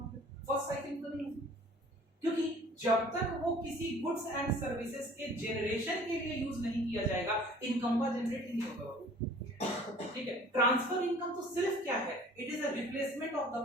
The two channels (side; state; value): both; normal; correlation 0.49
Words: है, फर्स्ट साइकिल तो नहीं, क्योंकि जब तक वो किसी गुड्स एंड सर्विसेज के जनरेशन के लिए यूज नहीं किया जाएगा इनकम का जनरेट ही नहीं होगा। ठीक है, ट्रांसफर इनकम तो सिर्फ क्या है, it is a replacement of